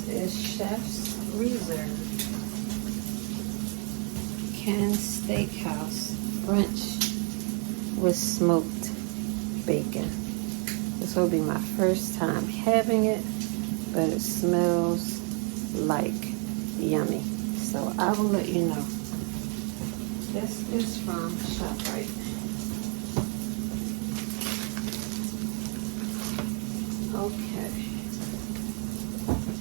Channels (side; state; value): left; quieter; 37.3 dB